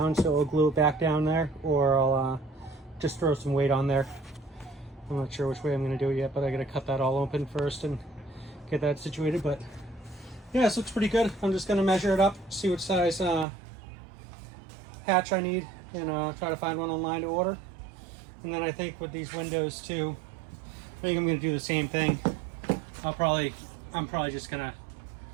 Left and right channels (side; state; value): left; drops out; at 13.5 s